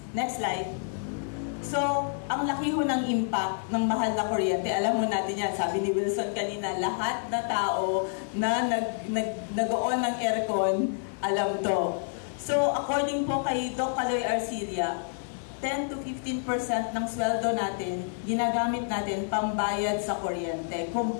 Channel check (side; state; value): right; silent; digital silence